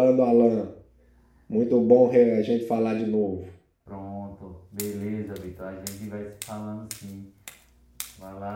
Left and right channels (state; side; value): identical; both; correlation 1.00